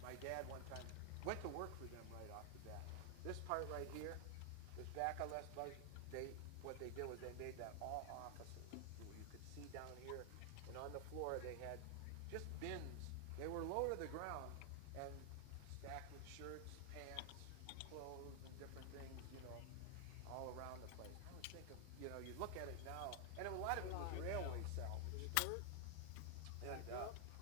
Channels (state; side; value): different; both; correlation 0.00